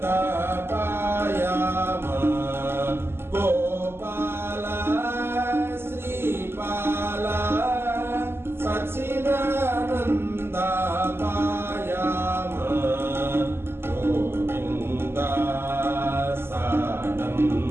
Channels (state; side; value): late; left; 0.12 ms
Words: पायाम गोपाल श्रीपाल सच्चिदानन्द पायाम गोविन्द